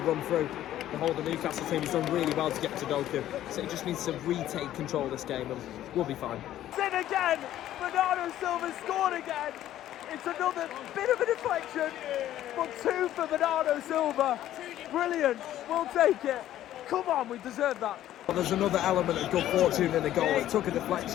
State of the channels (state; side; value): quieter; right; 12.8 dB